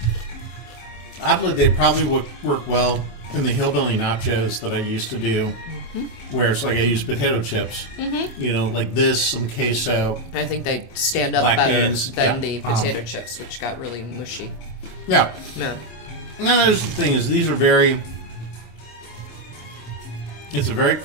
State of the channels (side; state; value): right; late; 25 ms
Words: oddly, they probably would work well in the hillbilly nachos that I used to do, where it's like I use potato chips, like this, some queso. I think they stand up black better beans. than the potato chips, which got really mushy. Yeah. Yeah. No, the thing is, these are it's a very